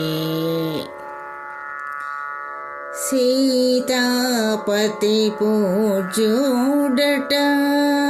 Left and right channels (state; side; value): identical; both; correlation 1.00